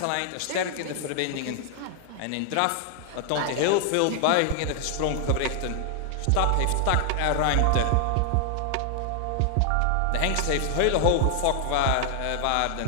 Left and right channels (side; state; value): both; different; correlation 0.00